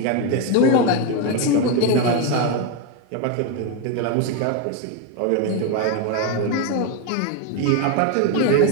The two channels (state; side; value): different; both; correlation 0.02